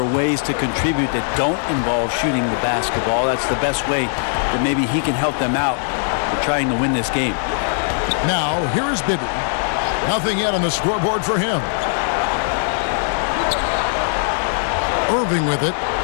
are ways to contribute that don't involve shooting the basketball. That's the best way that maybe he can help them out in trying to win this game. Now, here's Bibby. Nothing yet on the scoreboard for him. Irving with it,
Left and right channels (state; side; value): silent; right; digital silence